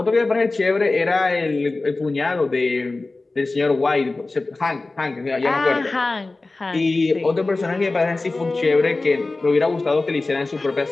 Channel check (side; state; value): right; quieter; 3.3 dB